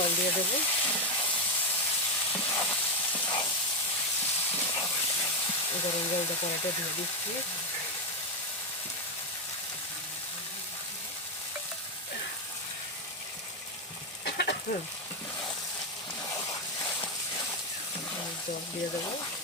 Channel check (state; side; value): normal; both; correlation 0.06